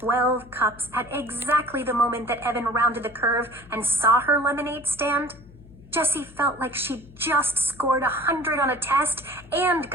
cups at exactly the moment that Evan rounded the curve and saw her lemonade stand, Jessie felt like she'd just scored 100 on a test and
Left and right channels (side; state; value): left; noise; hum, 22 dB below the sound